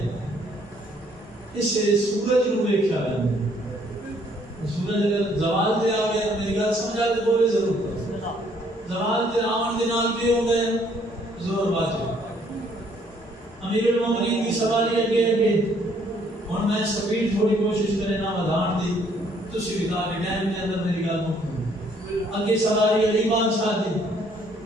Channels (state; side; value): normal; both; correlation 0.65